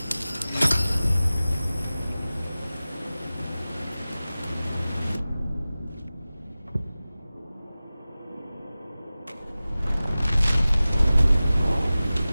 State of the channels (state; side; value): inverted; both; correlation -0.97